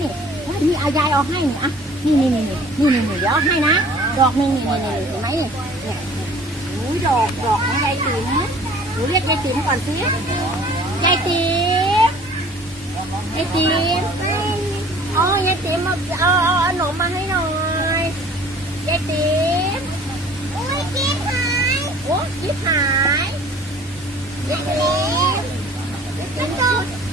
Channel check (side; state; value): both; normal; correlation 0.50